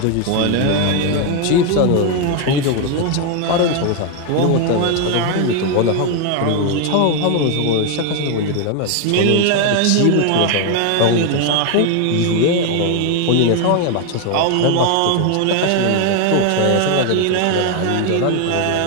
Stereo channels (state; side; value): different; both; correlation 0.01